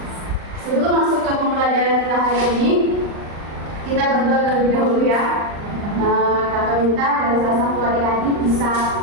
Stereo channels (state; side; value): late; left; 39 ms